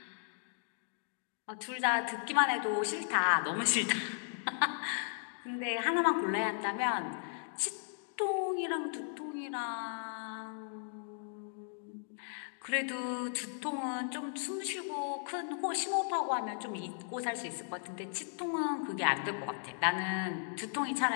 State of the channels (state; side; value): silent; right; digital silence